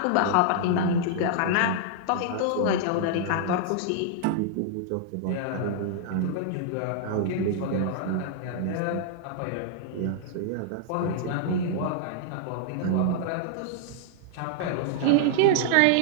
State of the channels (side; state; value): both; different; correlation -0.01